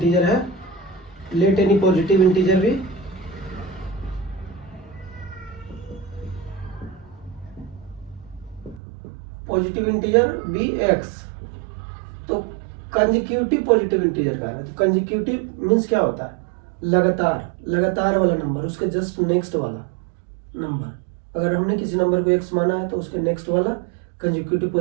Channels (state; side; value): drops out; left; at 8.8 s